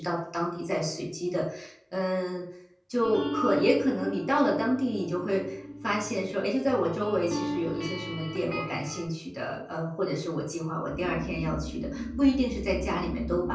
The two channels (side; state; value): both; identical; correlation 1.00